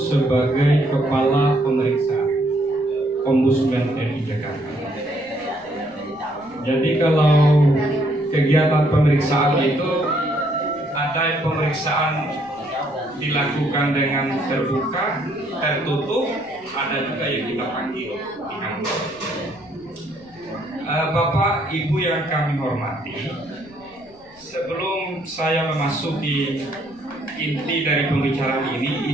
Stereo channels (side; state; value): left; noise; rumble, 28 dB below the sound